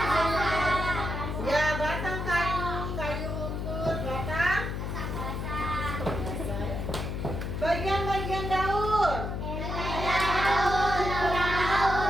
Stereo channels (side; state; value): left; noise; hum, 3 dB below the sound